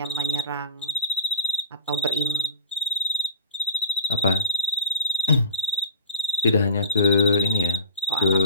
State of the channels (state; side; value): inverted; both; correlation -0.33